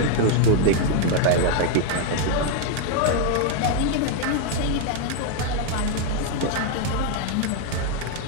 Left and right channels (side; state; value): both; different; correlation 0.01